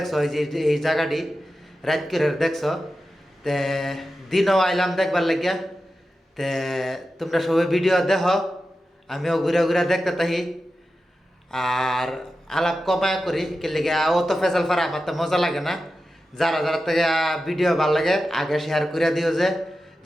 এই জায়গাটি রাইত করে দেখছো। তে দিনও আইলাম দেখবার লাগিয়া। তে তোমরা সবাই ভিডিও দেখো, আমিও ঘুরে ঘুরে দেখতে থাকি। আর আলাপ কমায় করি কে লেগে অত ফেসাল ফারা আমার তো মজা লাগে না। যারা যারা থেকে ভিডিও ভাল লাগে আগে শেয়ার করে দিও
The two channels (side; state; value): both; normal; correlation 0.92